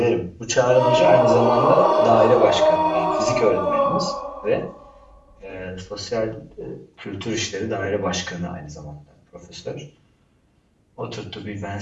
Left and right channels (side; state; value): both; identical; correlation 1.00